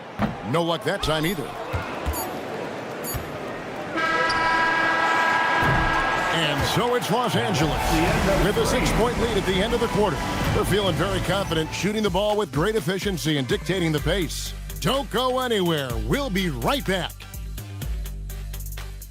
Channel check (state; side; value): identical; both; correlation 1.00